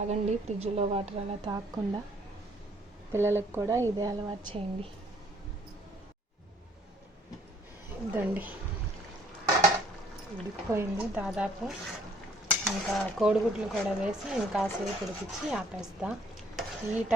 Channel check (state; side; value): normal; both; correlation 0.60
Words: ఫ్రిడ్జ్లో వాటర్ అలా తాగకుండా. పిల్లలకు కూడా ఇదే అలవాటు చేయండి. ఇదండి, ఉడికిపోయింది దాదాపు. ఇంకా కోడిగుడ్లు కూడా వేసి ఇంకాసేపు ఉడికించి ఆపేస్తా. ఈ